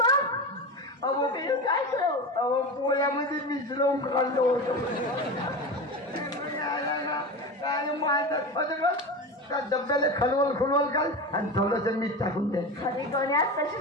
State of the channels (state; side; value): normal; both; correlation 0.25